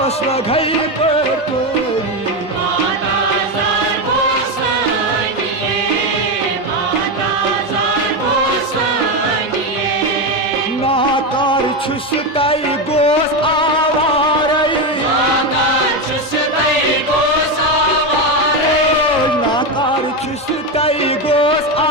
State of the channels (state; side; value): normal; both; correlation 0.12